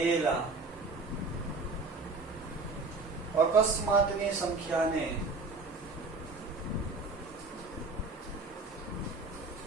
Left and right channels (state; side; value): quieter; left; 3.7 dB